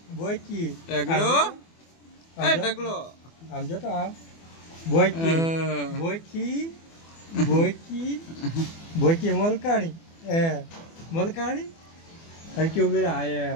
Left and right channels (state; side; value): late; right; 24 ms